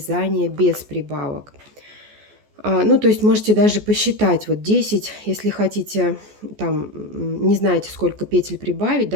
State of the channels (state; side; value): late; left; 14 ms